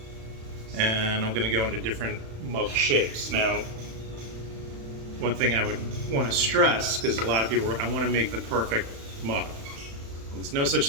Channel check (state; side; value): late; left; 35 ms